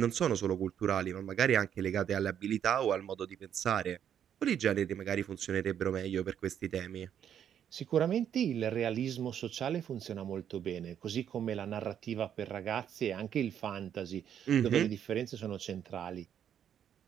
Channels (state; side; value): quieter; left; 9.3 dB